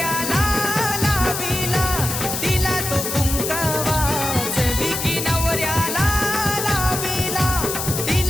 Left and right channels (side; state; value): left; noise; hiss, 4 dB below the sound